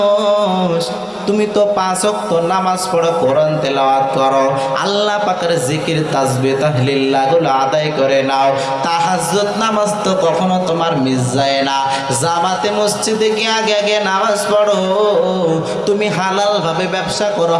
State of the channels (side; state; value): both; identical; correlation 1.00